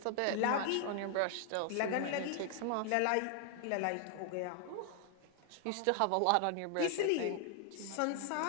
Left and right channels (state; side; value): different; both; correlation 0.00